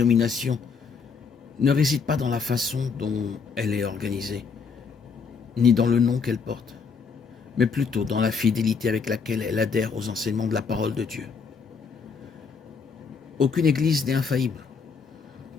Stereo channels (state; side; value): quieter; right; 5.5 dB